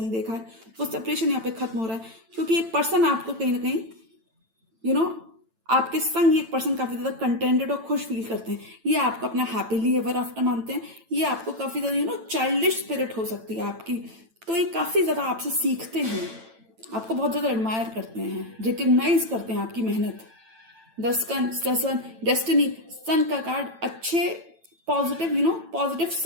देखा है, वो सेपरेशन यहाँ पे खत्म हो रहा है, क्योंकि ये पर्सन आपको कहीं ना कहीं आपके संग एक पर्सन काफी ज्यादा कंटेंटेड और खुश फील करते हैं। ये आपको अपना हैप्पीली एवर आफ्टर मानते हैं। ये आपको काफी ज्यादा चाइल्डिश स्पिरिट हो सकती है आपकी, तो ये काफी ज्यादा आपसे सीखते हैं, आपको बहुत ज्यादा एडमायर करते हैं, रिकग्नाइज करते हैं आपकी मेहनत। द सन डेस्टिनी, सन का कार्ड अच्छे पॉजिटिव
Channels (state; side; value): late; left; 9.0 ms